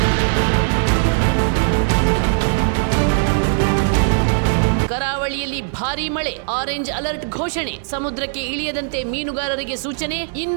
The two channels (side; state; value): left; silent; digital silence